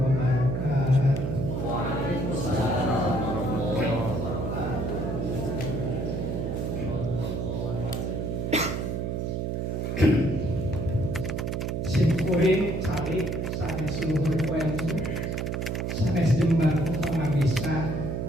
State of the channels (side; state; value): right; noise; hum, 1 dB below the sound